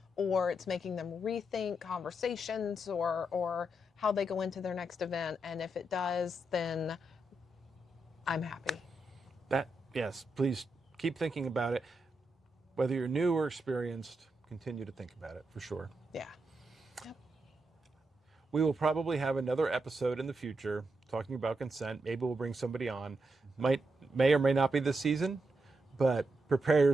or it's making them rethink conversations or how they go into their next event. And if it does, then I'm happy. Yes, please keep thinking about it. Whether you're new or experienced, continue to think about it for sure. Yeah. Yep. We will probably have another episode in the future talking about consent. Maybe we'll bring somebody on. May or may not be this season, but prepare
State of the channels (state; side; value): normal; both; correlation 0.84